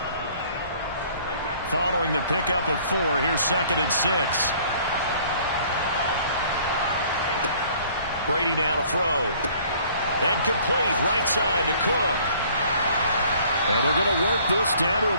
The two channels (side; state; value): both; inverted; correlation -0.56